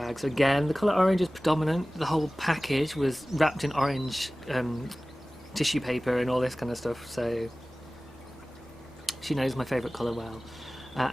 So again, the colour orange is predominant. The whole package was wrapped in orange tissue paper and all this kind of stuff. So She knows my favourite colour well.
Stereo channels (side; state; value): both; normal; correlation 0.98